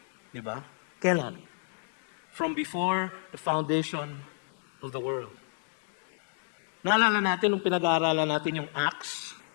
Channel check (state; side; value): silent; right; digital silence